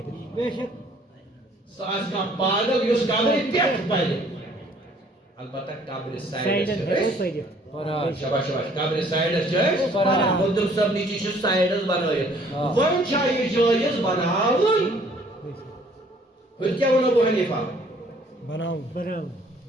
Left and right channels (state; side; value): normal; both; correlation 0.59